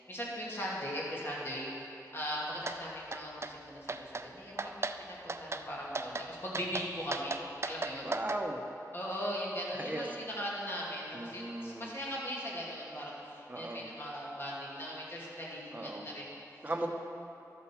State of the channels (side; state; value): both; normal; correlation 0.56